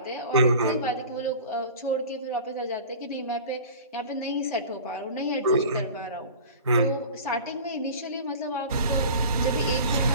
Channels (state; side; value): inverted; both; correlation -0.39